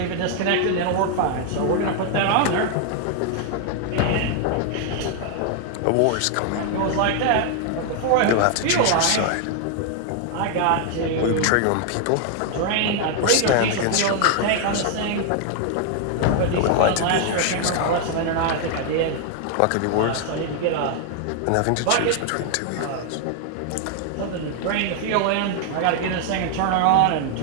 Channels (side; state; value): both; different; correlation 0.00